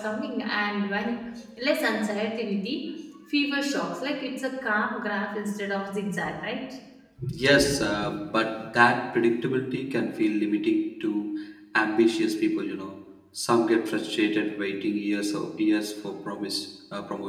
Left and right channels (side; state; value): both; identical; correlation 1.00